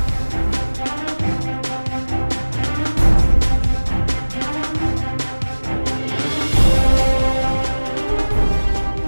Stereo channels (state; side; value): inverted; both; correlation -1.00